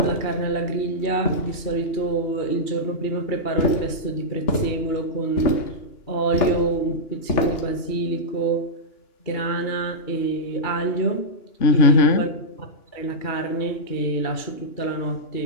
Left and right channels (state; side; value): late; right; 2.9 ms